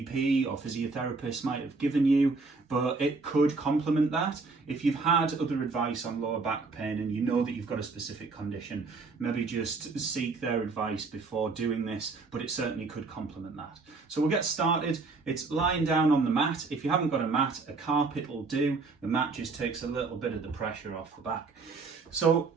or physiotherapist might have given you, but it could complement that. If you've had other advice on lower back pain and you know that you've got a specific condition, maybe just seek their advice before doing this, but it certainly could complement that. So we'll get started. It's lying down on the mat. If you haven't got a mat, a carpet will do. The mat just takes a little bit of the pressure off the back. So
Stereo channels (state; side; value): quieter; left; 4.1 dB